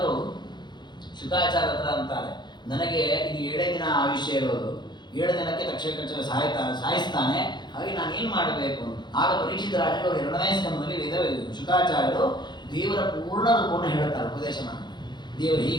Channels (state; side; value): late; right; 0.21 ms